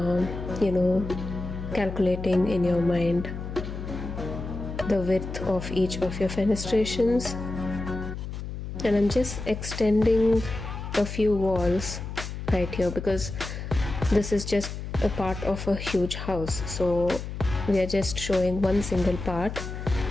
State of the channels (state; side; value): noise; left; hum, 7 dB below the sound